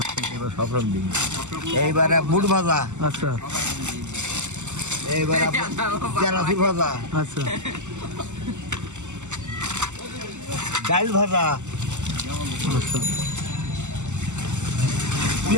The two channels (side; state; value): left; late; 0.84 ms